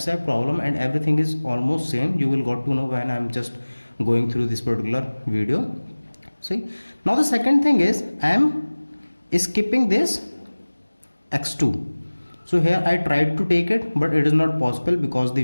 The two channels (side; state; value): both; inverted; correlation -1.00